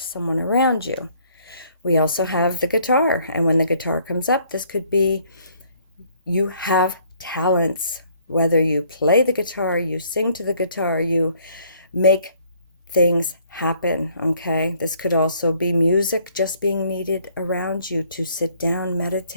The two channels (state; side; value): inverted; both; correlation -0.63